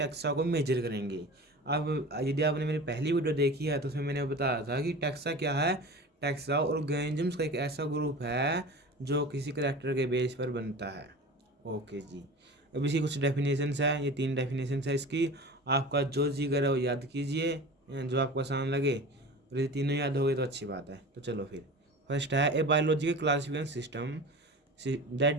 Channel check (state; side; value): normal; both; correlation 0.35